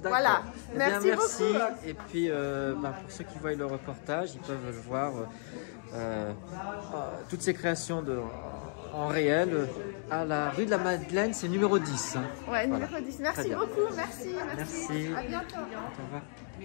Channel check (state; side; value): silent; right; 56 dB below the other